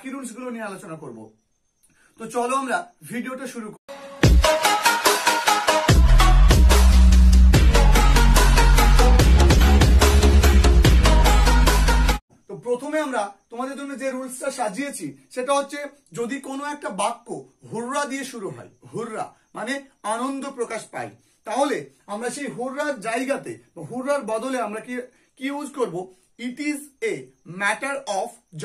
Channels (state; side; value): identical; both; correlation 1.00